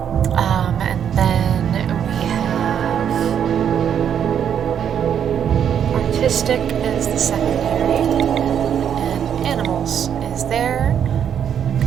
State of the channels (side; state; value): left; quieter; 8.7 dB